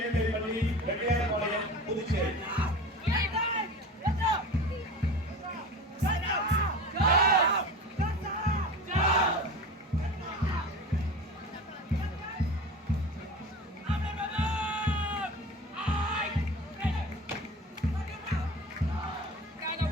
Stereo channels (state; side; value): normal; both; correlation 0.34